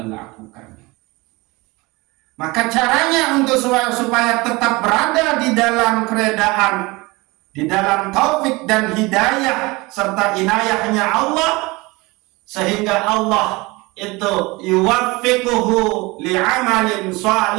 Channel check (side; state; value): left; quieter; 23.6 dB